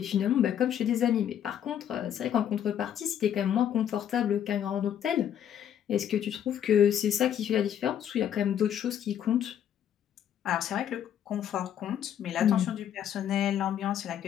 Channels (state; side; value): quieter; right; 9.7 dB